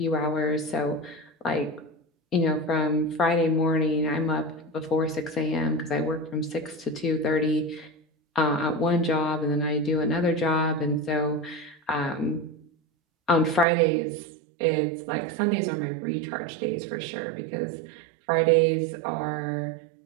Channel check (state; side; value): drops out; left; at 13.7 s